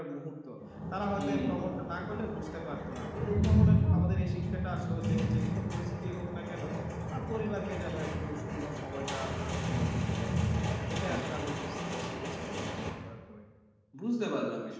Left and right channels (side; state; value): both; identical; correlation 1.00